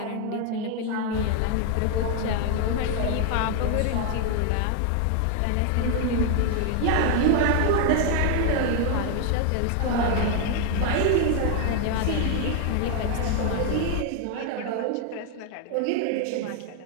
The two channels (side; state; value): both; different; correlation 0.00